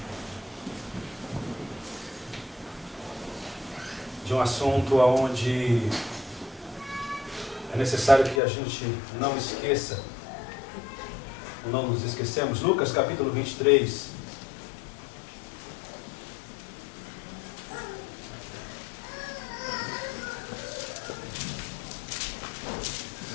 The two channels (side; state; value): right; drops out; at 8.4 s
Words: de um assunto onde é necessário que a gente não esqueça, ou não nos esquecemos. Lucas capítulo 23.